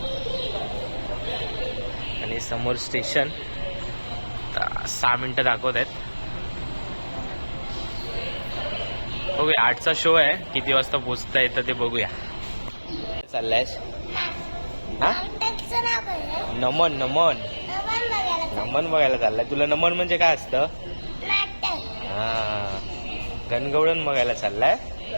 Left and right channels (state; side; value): inverted; both; correlation -1.00